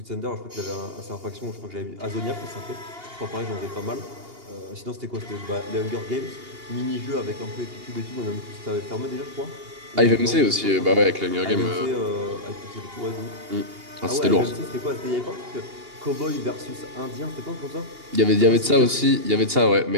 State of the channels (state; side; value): late; left; 2.8 ms